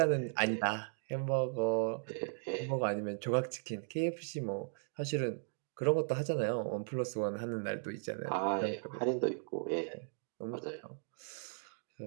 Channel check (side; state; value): left; silent; digital silence